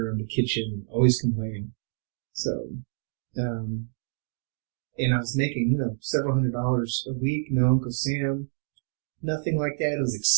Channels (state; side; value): silent; left; digital silence